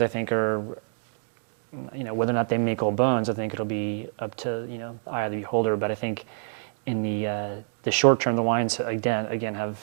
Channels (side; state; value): left; silent; digital silence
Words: I think, are, whether or not they make old bones, I think it'll be up to, eye of the beholder, but I think in the short term, the wines, again have